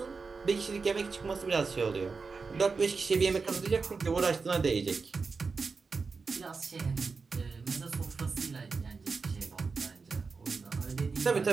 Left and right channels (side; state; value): left; quieter; 4.6 dB